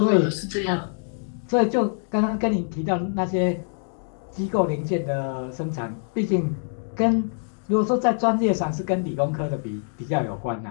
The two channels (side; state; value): right; silent; digital silence